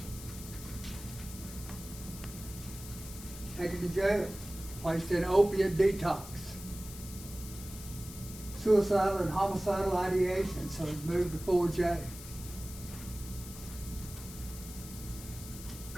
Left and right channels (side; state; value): left; noise; hiss, 13 dB below the sound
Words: Taken to jail, placed in opiate detox. Suicidal and homicidal ideation, so he's moved to 4J.